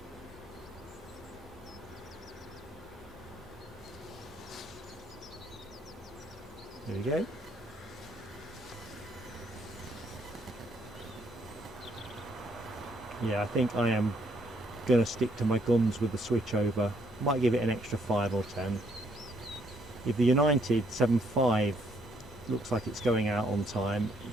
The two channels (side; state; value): both; normal; correlation 0.69